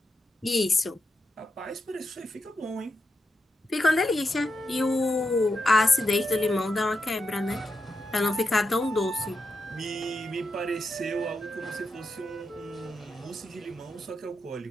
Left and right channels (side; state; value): both; normal; correlation 0.86